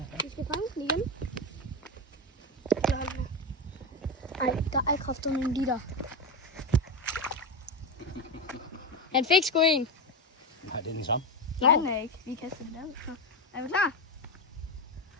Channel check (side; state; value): both; normal; correlation 0.14